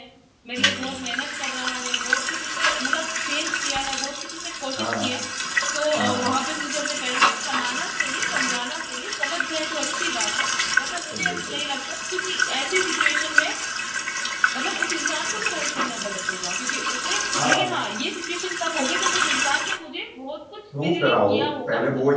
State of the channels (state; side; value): identical; both; correlation 1.00